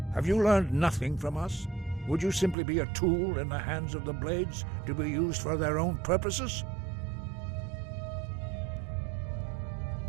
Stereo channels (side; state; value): left; drops out; at 2.6 s